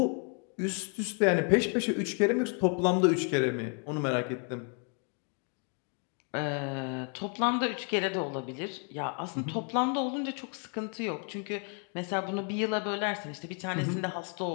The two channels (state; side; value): quieter; right; 39.7 dB